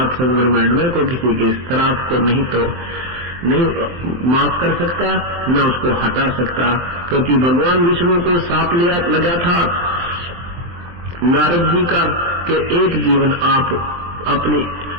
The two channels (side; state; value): left; late; 23 ms